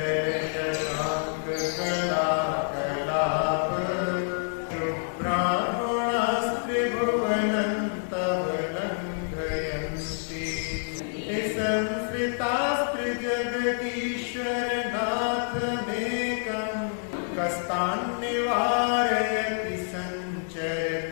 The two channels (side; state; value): right; silent; digital silence